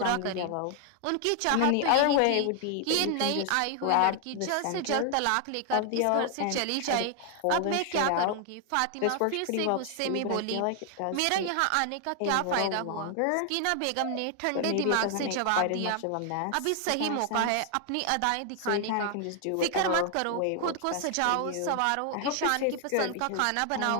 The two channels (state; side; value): different; both; correlation 0.00